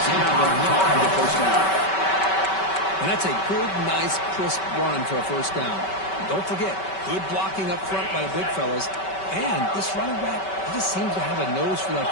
have enough for the first down. And that's a good, nice, crisp run for a first down. And don't forget, good blocking up front by the big fellas. And this running back, he just seems to have a nose for that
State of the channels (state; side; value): late; right; 5.2 ms